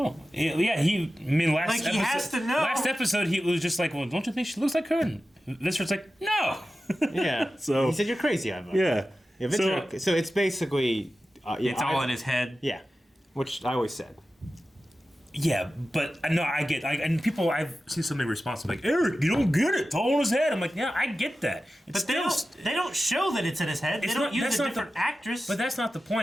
yeah. He episode, has to know. Last episode, he was just like, well, don't you think she looks like her? And Viscer's like, no. Yeah. So he said, you're crazy, Ivar. Yeah. So it's basically... it's all in his head. Yeah. Which I always said. Yeah, but no, I get, and people, I've seen so many responses like, Eric, you don't get it. It's all in his head. I'm like, yeah, I get that. But they don't show that it's in his head. They don't use a different actress. But that's not the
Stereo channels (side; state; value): both; normal; correlation 0.94